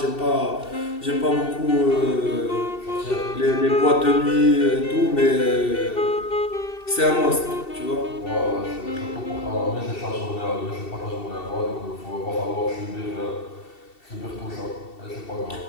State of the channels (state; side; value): late; right; 2.7 ms